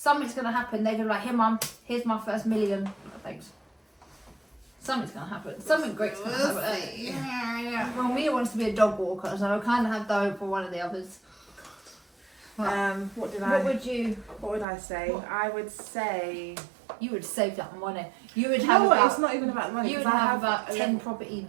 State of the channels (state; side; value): drops out; left; at 14.7 s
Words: gonna happen. They're gonna be like, "Here, mum, here's my first million." Thanks. Something's gonna happen. Something great's gonna happen. Yeah. Well, Mia wants to be a dog walker, so I kind of have the hope for one of the others. What would I say? What? I would say you would save that money. You would have. have. It's not even about money. You would have about 10